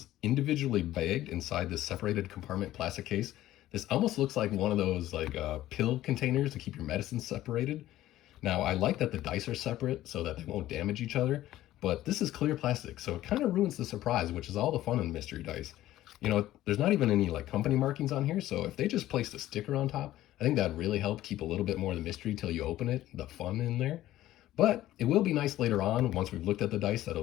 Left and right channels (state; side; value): quieter; right; 14.4 dB